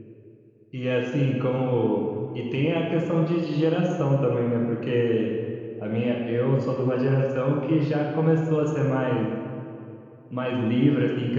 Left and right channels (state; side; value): identical; both; correlation 1.00